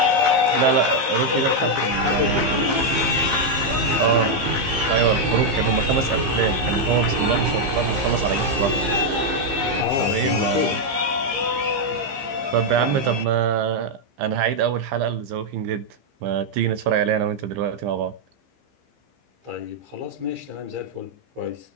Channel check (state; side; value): late; left; 15 ms